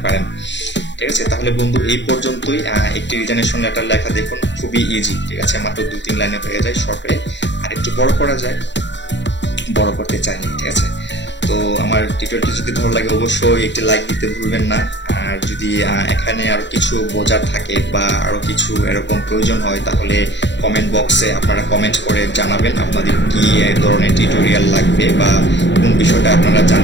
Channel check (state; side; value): late; right; 0.52 ms